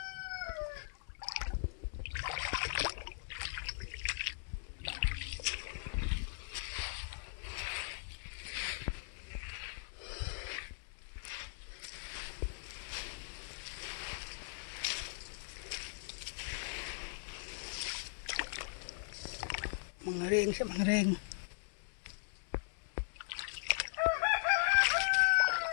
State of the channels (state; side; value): silent; right; digital silence